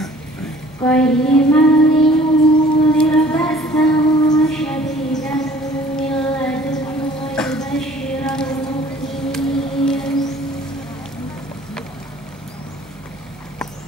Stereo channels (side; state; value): right; noise; hum, 27 dB below the sound